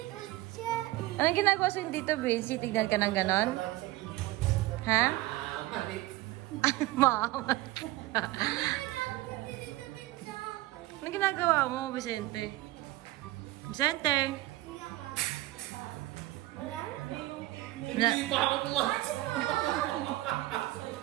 siya eh. Anong ginagawa sa'yo dito, Vinci? Tignan ka ng ganon? Ha? Mama. Anong ginagawa mo, Vicente? Vicente? Wala? Hindi pa ako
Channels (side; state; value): left; quieter; 17.8 dB